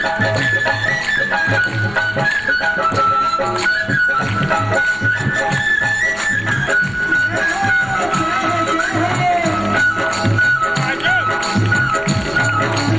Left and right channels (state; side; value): noise; left; rumble, 18 dB below the sound